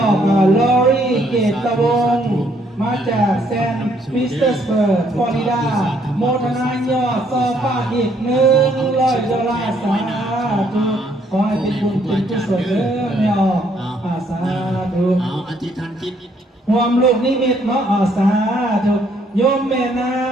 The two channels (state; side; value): normal; both; correlation 0.68